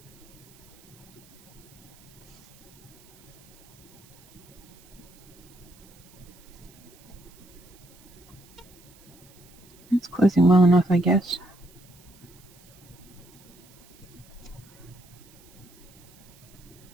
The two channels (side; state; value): right; noise; hiss, 25 dB below the sound